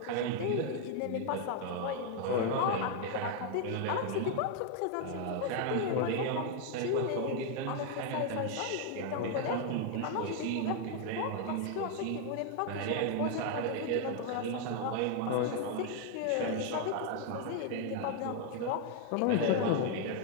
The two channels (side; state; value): both; different; correlation 0.01